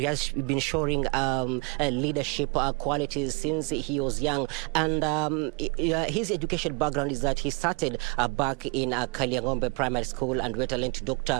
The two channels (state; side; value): quieter; left; 31.7 dB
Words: leadership qualities since he was young. And his education background is that he started back in Kaliangombe Primary School and went on to Dr.